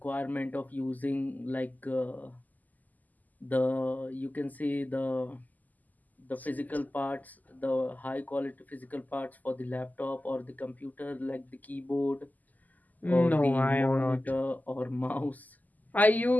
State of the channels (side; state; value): right; late; 0.081 ms